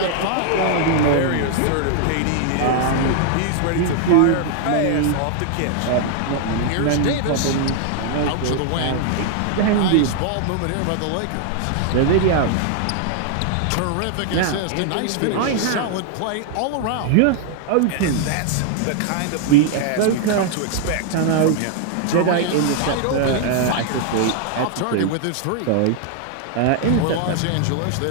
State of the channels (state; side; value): different; both; correlation 0.00